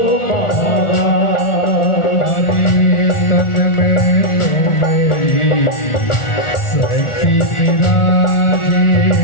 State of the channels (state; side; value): late; right; 1.4 ms